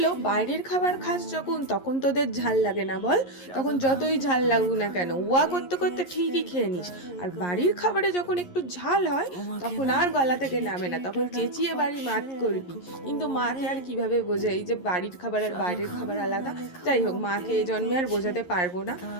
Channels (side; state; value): right; late; 11 ms